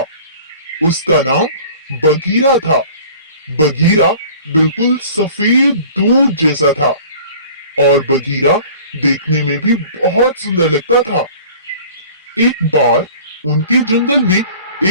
उसका नाम बगीरा था। बगीरा बिल्कुल सफेद दूध जैसा था और बगीरा देखने में भी बहुत सुंदर लगता था। एक बार उनके जंगल में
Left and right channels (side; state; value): both; inverted; correlation -0.46